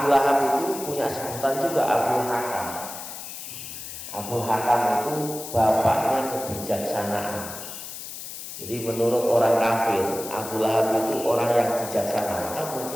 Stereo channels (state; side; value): noise; left; hiss, 10 dB below the sound